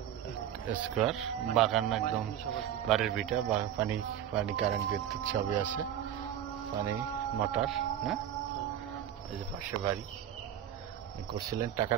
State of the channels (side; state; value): left; quieter; 10.5 dB